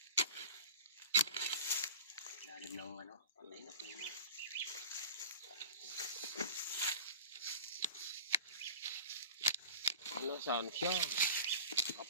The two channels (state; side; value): inverted; both; correlation -0.36